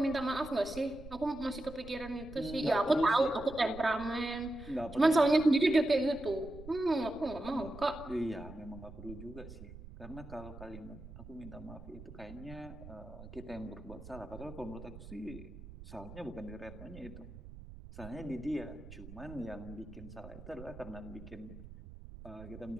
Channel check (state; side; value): noise; right; rumble, 14 dB below the sound